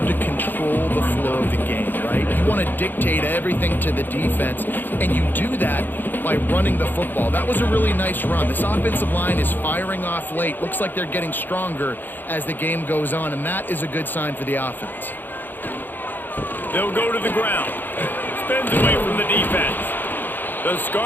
to control the flow of the game, right? You want to dictate everything to the defense, and you do that by running the football. That was a really nice run. This offensive line is firing off late. Looks like they're getting stronger as the game goes on, and that is a good sign for the offense. They'll go to the ground. Spins away from the defense. The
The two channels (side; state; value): right; late; 0.090 ms